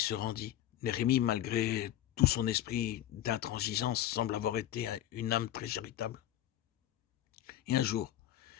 rendit. Néhémie, malgré tout son esprit d'intransigeance, semble avoir été une âme très charitable. Et un jour,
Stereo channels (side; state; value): right; quieter; 12.6 dB